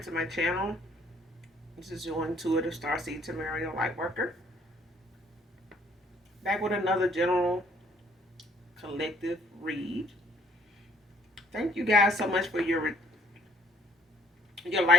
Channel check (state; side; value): normal; both; correlation 0.61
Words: to my channel. This is your intuitive starseed Tamario Lightworker. Back with another general collective read. Thank you guys so much for your